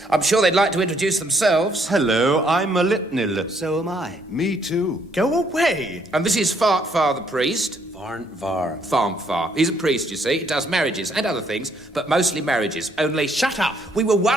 I'm sure they'd like to introduce themselves. Hello, I'm a Litnil. So am I. Me too. Go away. And this is Fartfar the priest. Farnvar. Farmfar. He's a priest, you see. He does marriages and other things, but mostly marriages. Only... Shut up. We were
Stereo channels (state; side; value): normal; both; correlation 0.69